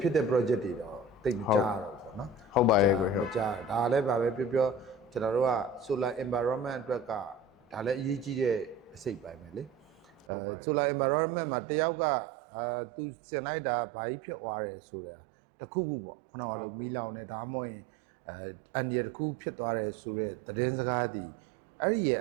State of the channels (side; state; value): left; drops out; at 10.2 s